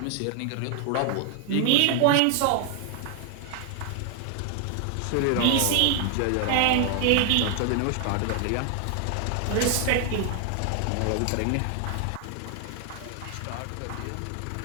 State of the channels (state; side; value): different; both; correlation 0.00